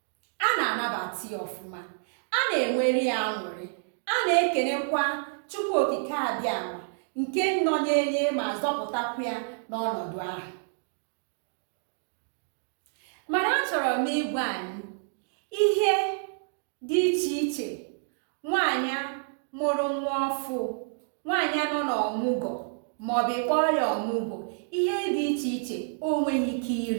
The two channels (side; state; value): left; silent; digital silence